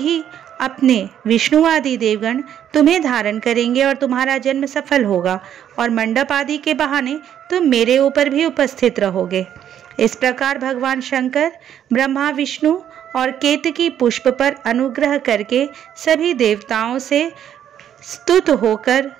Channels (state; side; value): quieter; left; 10.0 dB